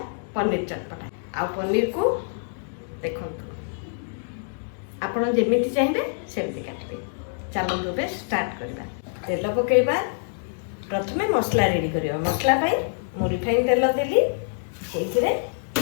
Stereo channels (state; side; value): silent; right; digital silence